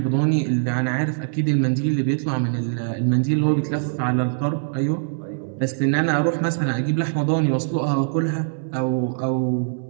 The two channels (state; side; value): silent; left; 64 dB below the other